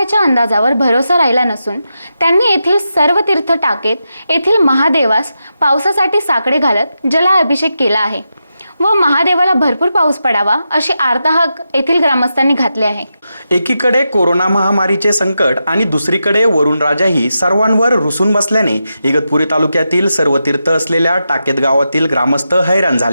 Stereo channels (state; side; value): inverted; both; correlation -0.88